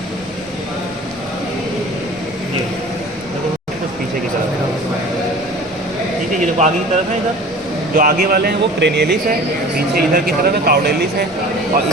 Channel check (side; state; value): both; normal; correlation 0.43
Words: ये देखो कुछ पीछे की तरफ, ठीक है। ये देखो आगे की तरफ है, इधर जो आगे वाले हैं वो क्रेनियलिस है, पीछे इधर की तरफ है काउडेलिस है। और